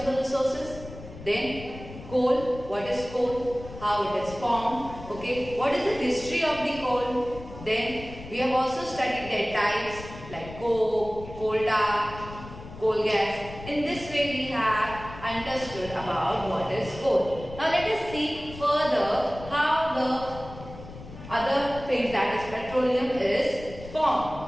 resources. Then coal, what is coal, how it is formed, okay, what is the history of the coal. Then we have also studied their types like coke, coal tar, coal gas. In this way we have understood about what is coal. Now let us see further how the other things, that is petroleum, is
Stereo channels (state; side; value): noise; left; rumble, 14 dB below the sound